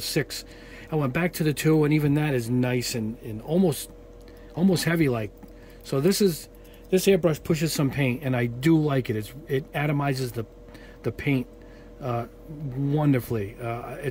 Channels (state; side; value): identical; both; correlation 1.00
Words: I went back to the 2, and even that is nice and almost heavy like. So this airbrush pushes some paint, and I do like it. It atomizes the paint wonderfully.